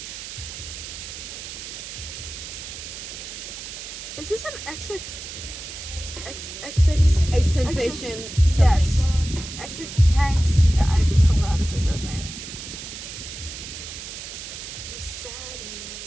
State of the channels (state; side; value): noise; right; hiss, 10 dB below the sound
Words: Is this an XX? A sensation. Yes. Something. XX tanks. I don't know how to say bro's name. I'm sad and